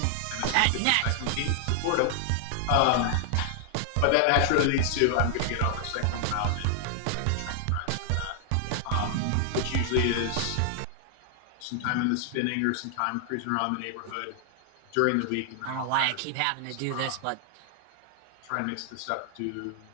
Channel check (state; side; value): different; both; correlation 0.00